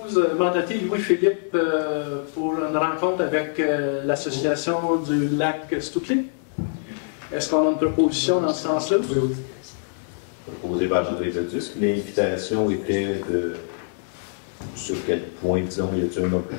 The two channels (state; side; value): silent; right; 62 dB below the other